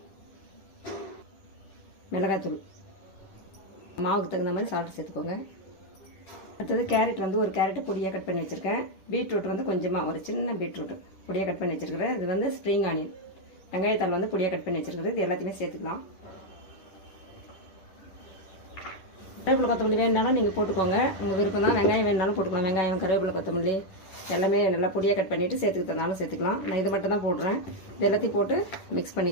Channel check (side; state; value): right; late; 10 ms